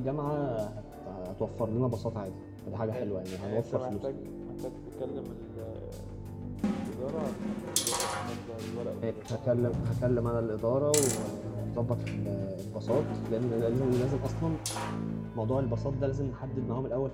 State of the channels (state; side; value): identical; both; correlation 1.00